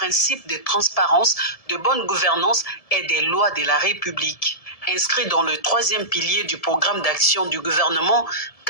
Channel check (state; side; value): late; right; 1.7 ms